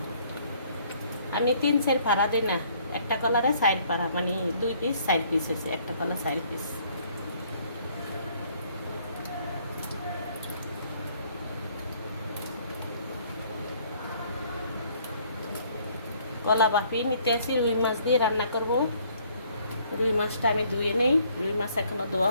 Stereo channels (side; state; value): both; inverted; correlation -0.62